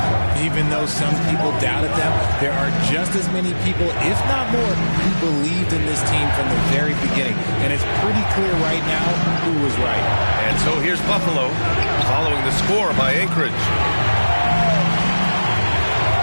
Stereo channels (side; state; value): both; inverted; correlation -1.00